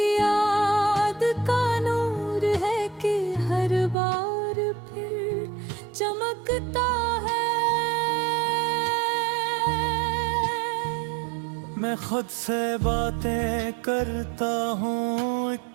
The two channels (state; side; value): drops out; left; at 4.0 s